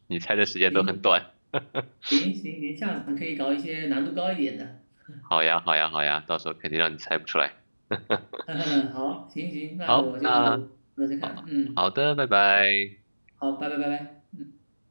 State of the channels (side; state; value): both; inverted; correlation -1.00